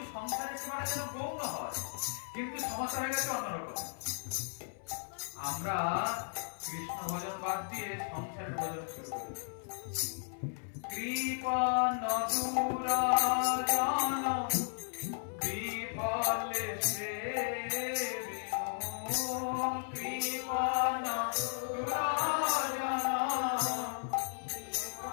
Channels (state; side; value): silent; right; 54 dB below the other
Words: সংসারের সেবাটা যেন গৌণ হয়। কিন্তু সমস্যা হয়ে গেছে অন্যরকম। আমরা কৃষ্ণ ভজন বাদ দিয়ে সংসারের ভজন শুরু করেছি। কৃপণ দুরাজন বিফলে সেবিনো, কৃপণ দুরাজন